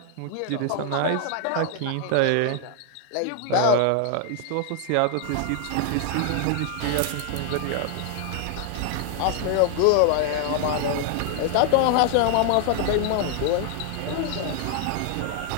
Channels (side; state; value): both; different; correlation 0.00